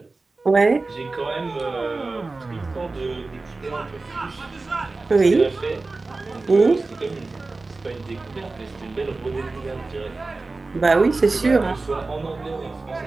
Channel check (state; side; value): quieter; left; 3.5 dB